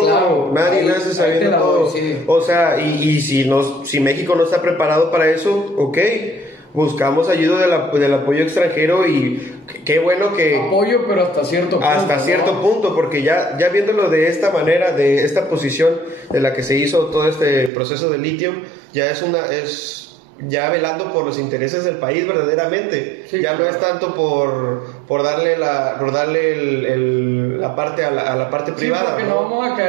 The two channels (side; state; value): left; drops out; at 17.7 s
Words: Claro, nace sabiendo todo. Sí. O sea, y si México no está preparado para eso, ok. Buscamos ayuda del apoyo extranjero y qué bueno que... Apoyo, pero hasta cierto punto. Hasta cierto punto, porque ya viéndolo de esta manera, de esta posición de la que se hizo todo este proceso de litio, ya es velando por los intereses del país verdaderamente. Sí, ya claro. No es tanto por darle la parte a la parte privada. Porque no vamos a